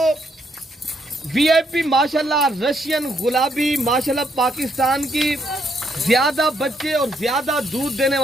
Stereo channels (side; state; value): both; normal; correlation 0.73